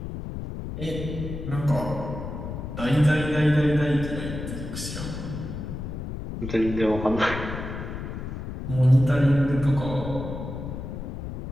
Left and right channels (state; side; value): noise; left; rumble, 7 dB below the sound